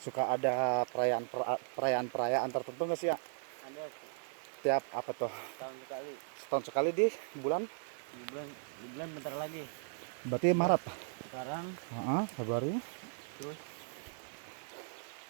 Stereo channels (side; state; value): left; silent; digital silence